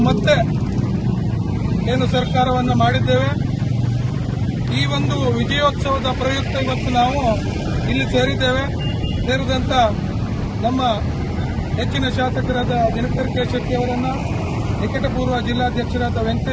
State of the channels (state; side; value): identical; both; correlation 1.00